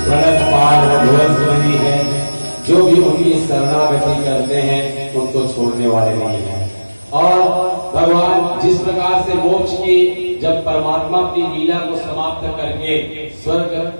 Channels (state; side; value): inverted; both; correlation -1.00